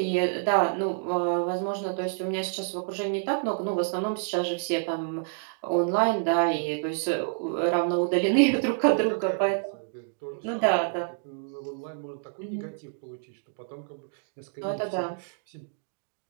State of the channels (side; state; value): left; silent; digital silence